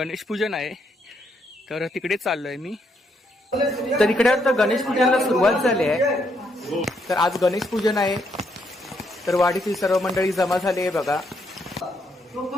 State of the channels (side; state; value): both; normal; correlation 0.75